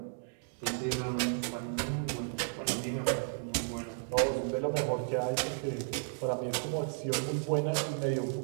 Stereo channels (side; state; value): left; silent; digital silence